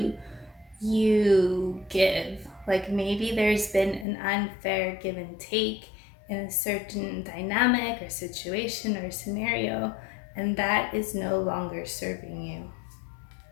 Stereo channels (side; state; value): right; drops out; at 4.0 s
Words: give. Like maybe there's been an unfair give and take in a certain dynamic or situation or scenario, and that is no longer serving you.